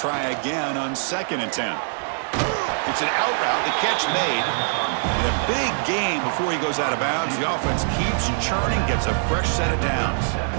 again on 2nd and 10. It's an out route, the catch made. And a big gain before he goes out of bounds. The offense keeps churning, gets a fresh set of downs.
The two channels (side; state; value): left; silent; digital silence